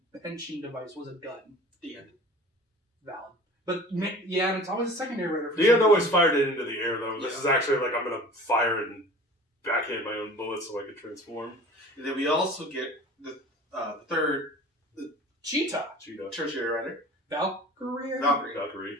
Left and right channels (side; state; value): both; normal; correlation 0.42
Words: Henshin device was a gun. The end. Valid. But, yeah, and it's always a secondary rider. The end always fired it into the air, though. This is actually like, I'm going to fire it and backhand my own bullets so I can transform. And then we also get the third... Cheetah. Tertiary rider. Valkyrie. Tertiary